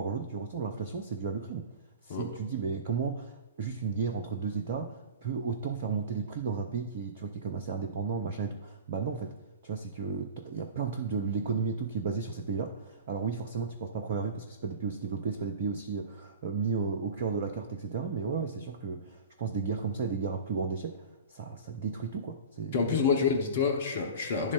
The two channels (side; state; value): both; inverted; correlation -0.33